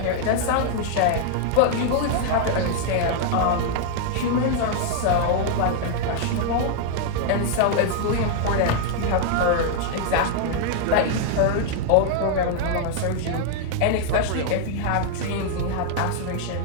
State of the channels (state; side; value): different; both; correlation 0.00